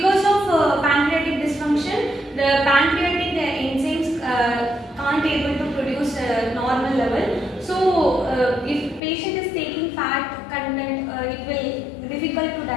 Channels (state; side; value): drops out; right; at 9.0 s